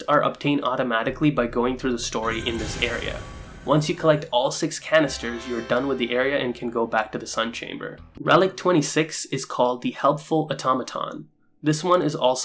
are obtained automatically by going through the story in this area. Once you collect all 6 canisters, you're done with the area and can go back to the Sunchamber. Relic 26 is called the Helpful Automaton. This one is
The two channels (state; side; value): identical; both; correlation 1.00